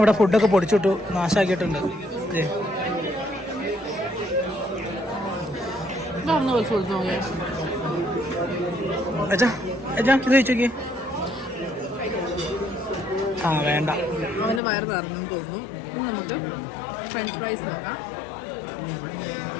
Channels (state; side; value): drops out; right; at 14.6 s